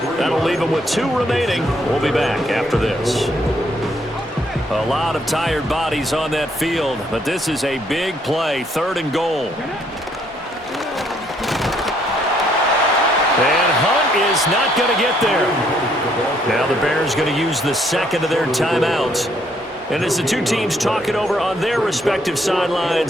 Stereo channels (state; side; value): normal; both; correlation 0.69